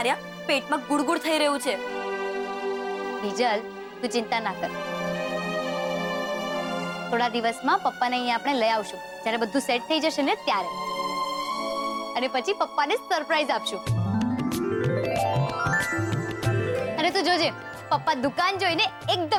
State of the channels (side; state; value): both; identical; correlation 1.00